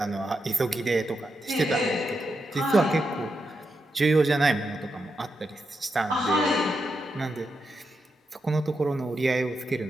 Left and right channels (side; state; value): both; normal; correlation 0.85